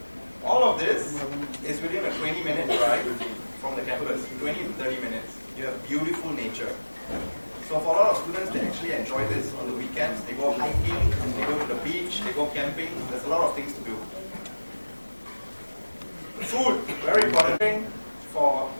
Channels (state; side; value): inverted; both; correlation -1.00